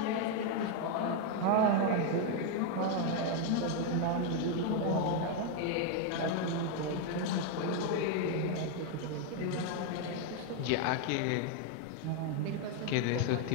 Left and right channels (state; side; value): different; both; correlation 0.01